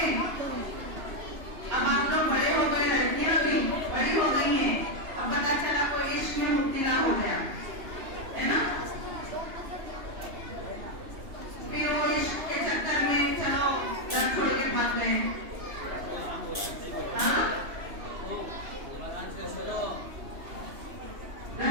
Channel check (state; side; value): late; left; 2.9 ms